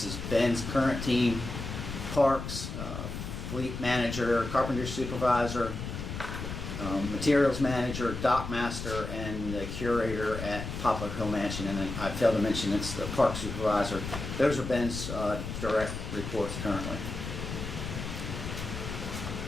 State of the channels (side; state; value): left; noise; rumble, 6 dB below the sound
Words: is Ben's current team, parks, fleet manager, carpenter supervisor, materials manager, dock master, and the curator at Poplar Hill Mansion. And then I failed to mention it's the park supervisor. Those are Ben's direct reports currently.